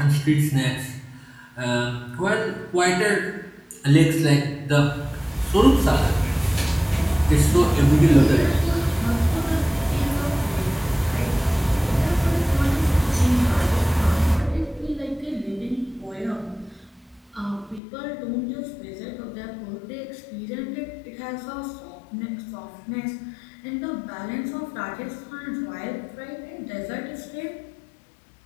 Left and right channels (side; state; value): right; drops out; at 17.8 s